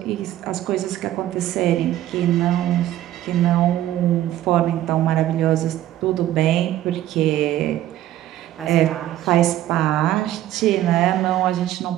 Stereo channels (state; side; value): quieter; left; 13.4 dB